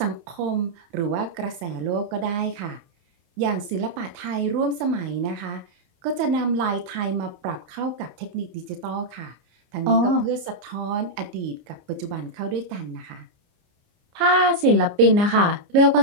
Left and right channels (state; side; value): late; left; 29 ms